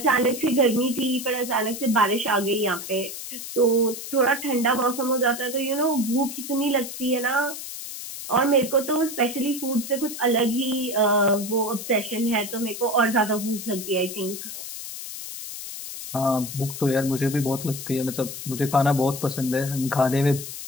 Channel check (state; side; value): noise; left; hiss, 9 dB below the sound